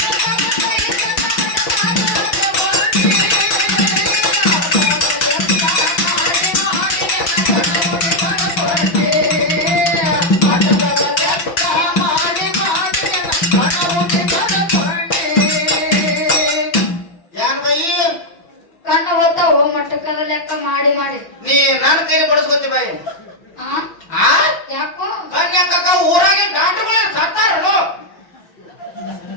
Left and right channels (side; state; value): right; late; 5.8 ms